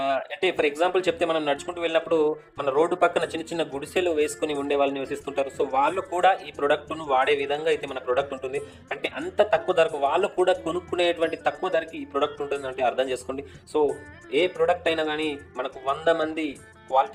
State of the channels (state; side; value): identical; both; correlation 1.00